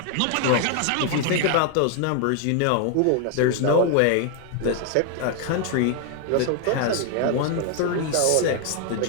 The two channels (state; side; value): different; both; correlation 0.00